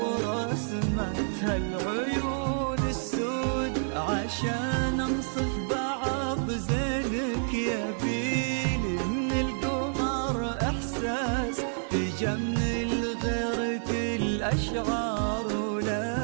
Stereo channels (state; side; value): silent; left; digital silence